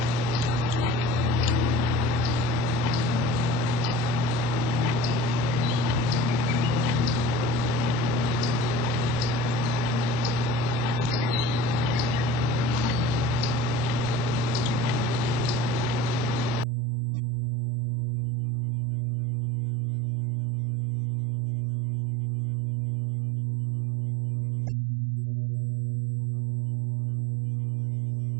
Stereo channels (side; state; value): left; drops out; at 16.7 s